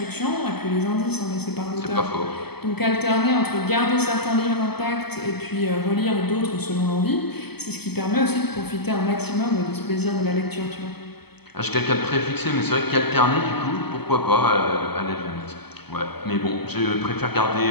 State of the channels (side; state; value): right; late; 0.97 ms